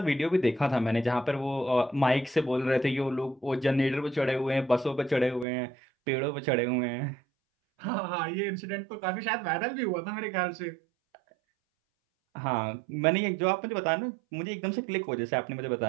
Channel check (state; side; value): drops out; left; at 5.5 s